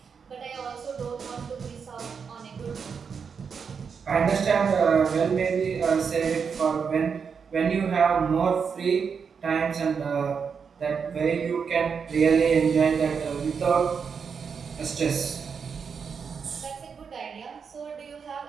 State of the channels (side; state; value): left; quieter; 6.2 dB